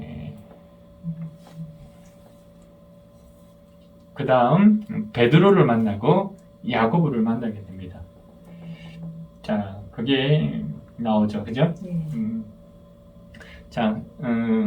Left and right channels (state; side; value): identical; both; correlation 1.00